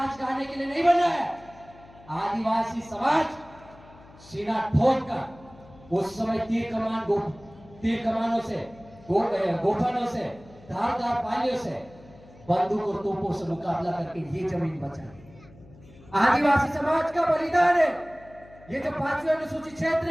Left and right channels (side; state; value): left; noise; hum, 23 dB below the sound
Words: गाने के लिए नहीं बना है। आदिवासी समाज सीना ठोक कर उस समय तीर कमानों से, गोफनों से, धारदार पालियों से, बंदूक और तोपों से मुकाबला करके ये जमीन बचा। आदिवासी समाज का बलिदान है। ये जो 5वीं अनुसूचित क्षेत्र